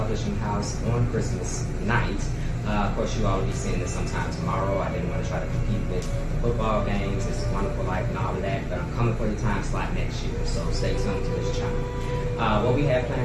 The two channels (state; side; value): identical; both; correlation 1.00